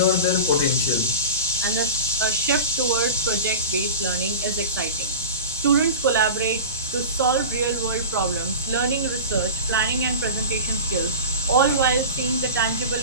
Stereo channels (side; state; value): both; inverted; correlation -0.31